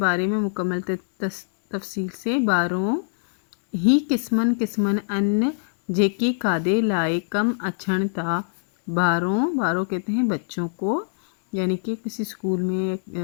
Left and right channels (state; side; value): silent; right; digital silence